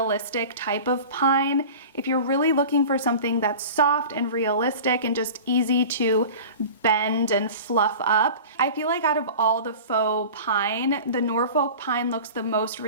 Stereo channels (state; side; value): inverted; both; correlation -0.37